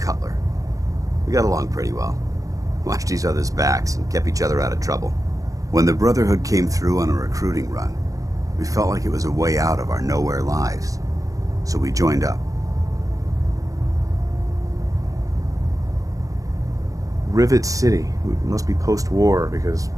We got along pretty well. Watched each other's backs and kept each other out of trouble. When the Brotherhood came through on a recruiting run, we felt like it was a way out of our nowhere lives. So we joined up. Rivet City. It must be post-war, because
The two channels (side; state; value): left; late; 0.16 ms